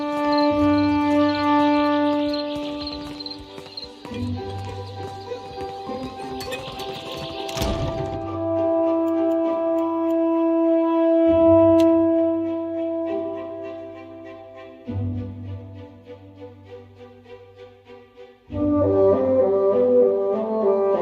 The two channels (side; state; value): both; identical; correlation 1.00